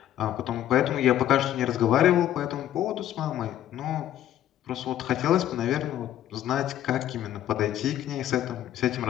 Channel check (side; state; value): right; quieter; 12.0 dB